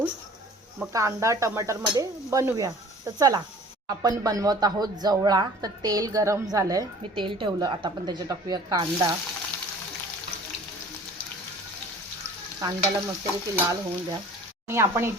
मग कांदा टमाटरमध्ये बनवूया। तर चला आपण बनवत आहोत जवळा। तर तेल गरम झालंय, मी तेल ठेवलं, आता आपण त्याच्यात टाकूया कांदा। कांद्याला मस्तपैकी लाल होऊन द्या आणि आपण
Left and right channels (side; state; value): both; normal; correlation 0.47